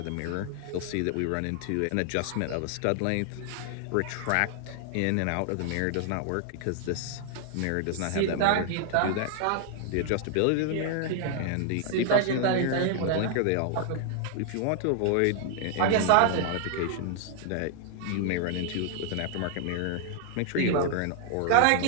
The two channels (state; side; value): different; both; correlation 0.00